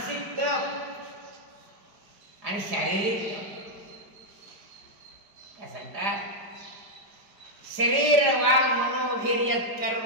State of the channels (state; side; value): late; left; 4.9 ms